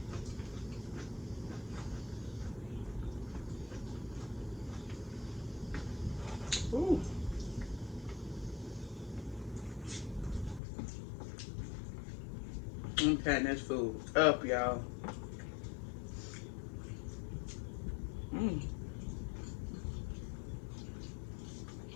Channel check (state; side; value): drops out; right; at 10.6 s